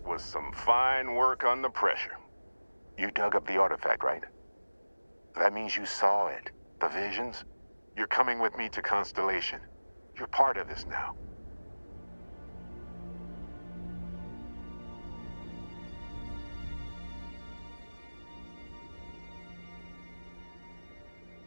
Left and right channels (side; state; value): both; inverted; correlation -1.00